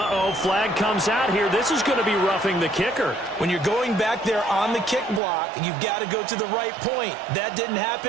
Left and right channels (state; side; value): drops out; left; at 5.2 s